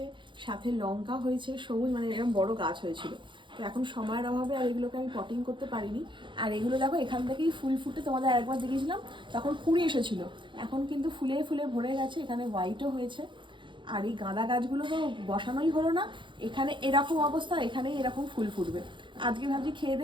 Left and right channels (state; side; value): late; left; 0.23 ms